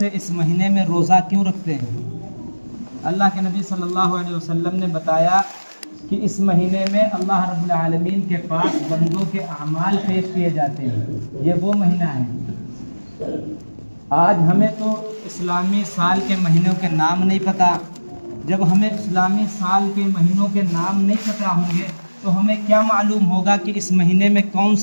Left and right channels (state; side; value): inverted; both; correlation -1.00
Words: اس مہینے میں روزہ کیوں رکھتے ہیں؟ اللہ کے نبی صلی اللہ علیہ وسلم نے بتایا کہ اس مہینے میں اللہ رب العالمین کے پاس بندوں کے اعمال پیش کیے جاتے ہیں، یہ وہ مہینہ ہے۔ آج ہمیں تو اسلامی سال کے مہینوں کے نام نہیں پتہ۔ جب ہمیں اسلامی سال کے مہینوں کے نام نہیں پتہ ہوں گے تو ہمیں کیا معلوم ہوگا کہ اس مہینے میں کون